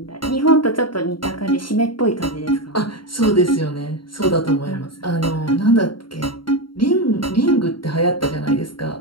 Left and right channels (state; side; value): late; right; 0.73 ms